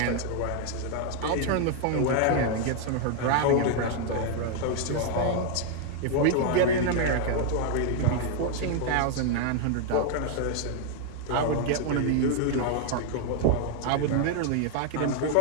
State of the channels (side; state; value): both; different; correlation 0.00